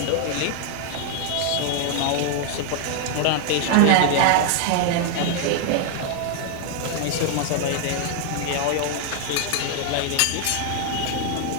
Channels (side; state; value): both; different; correlation 0.00